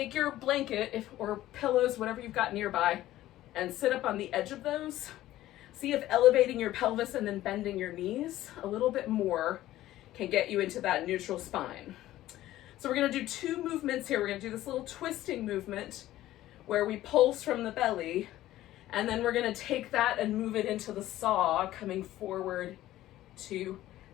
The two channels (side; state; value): right; quieter; 14.7 dB